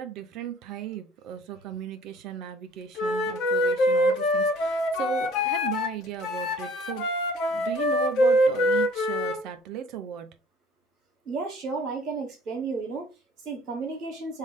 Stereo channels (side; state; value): both; normal; correlation 0.52